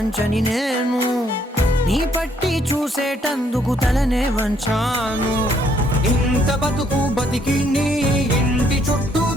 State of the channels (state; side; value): normal; both; correlation 0.68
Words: నేను, నీ పట్టి చూసేటందుకు తలనే వంచాను. ఇంత బతుకు బతికి నీ ఇంటి చుట్టూ